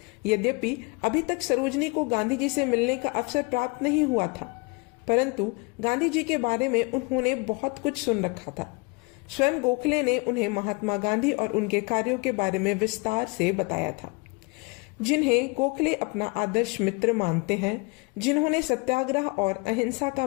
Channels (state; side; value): quieter; right; 29.4 dB